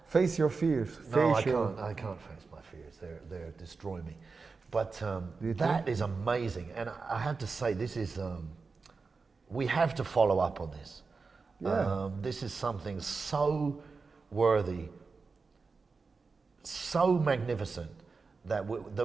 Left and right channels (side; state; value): left; quieter; 4.5 dB